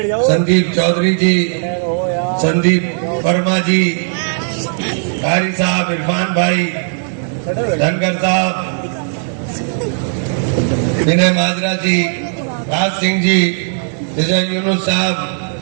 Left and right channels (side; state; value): left; silent; digital silence